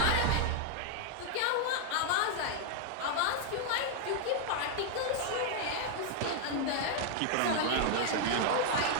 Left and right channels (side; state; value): both; different; correlation 0.00